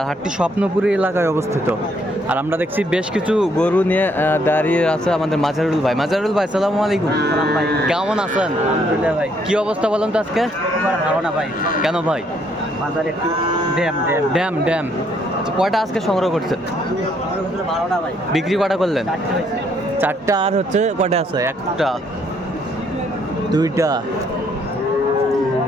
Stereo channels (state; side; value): normal; both; correlation 0.69